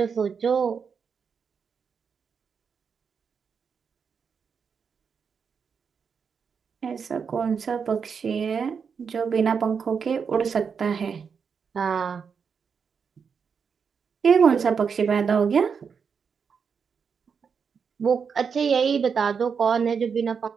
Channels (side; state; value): left; quieter; 6.2 dB